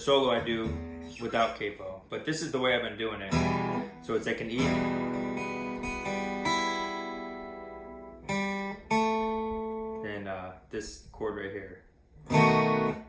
I do without capo. But this is the way I've been doing it. So it's like an E. And this chord right here.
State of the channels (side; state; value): both; identical; correlation 1.00